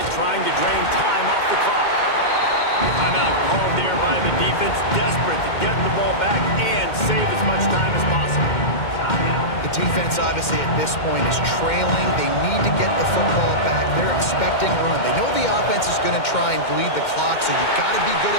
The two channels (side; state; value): right; late; 2.1 ms